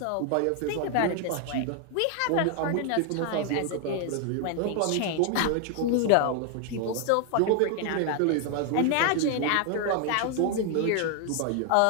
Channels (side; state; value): both; different; correlation 0.00